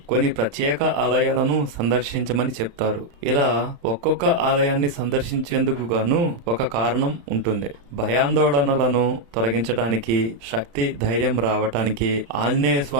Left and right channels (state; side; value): late; left; 35 ms